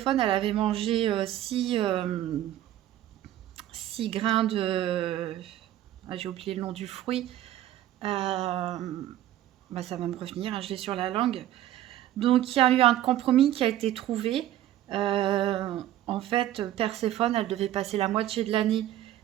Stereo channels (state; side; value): quieter; left; 13.0 dB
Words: elle avait mangé 6 grains de... Ah, j'ai oublié le nom du fruit. Bah, ça va me revenir, hein, je l'ai sur la langue. Donc il y a eu un compromis qui a été trouvé. En fait, Perséphone, elle devait passer la moitié de l'année